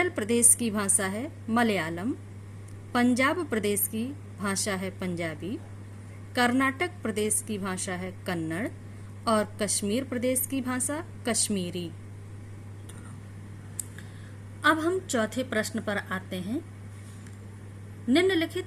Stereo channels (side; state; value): both; identical; correlation 1.00